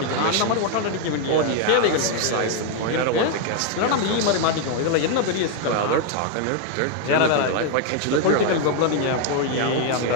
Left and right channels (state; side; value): different; both; correlation 0.00